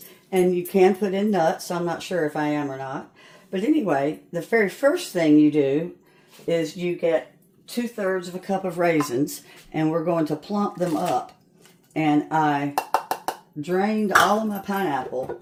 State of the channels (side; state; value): both; identical; correlation 1.00